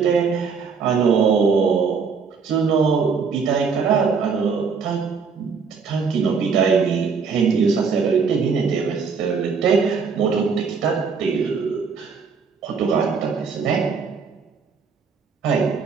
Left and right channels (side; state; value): left; quieter; 5.5 dB